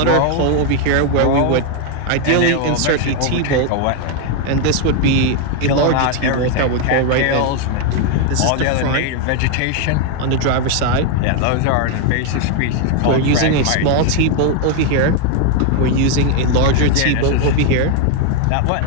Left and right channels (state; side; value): different; both; correlation 0.01